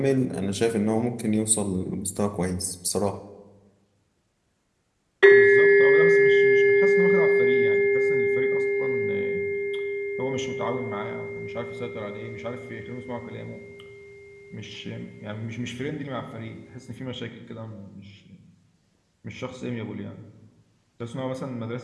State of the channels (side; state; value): both; identical; correlation 1.00